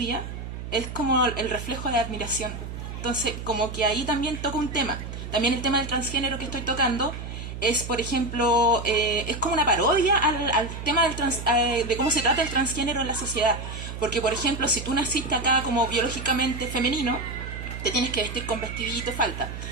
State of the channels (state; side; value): noise; right; hum, 8 dB below the sound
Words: es como el reflejo de admiración. Entonces, como que ahí también toca un tema. También el tema del transgénero que estoy tocando es, por ejemplo, es como una parodia al tema de cómo se trata el transgénero en la sociedad. Porque, por ejemplo, si tú naciste acá como biológicamente femenino, te tienes que vestir con vestidito, falta.